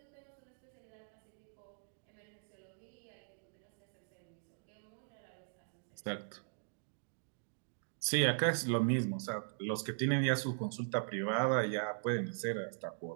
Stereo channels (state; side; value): silent; left; digital silence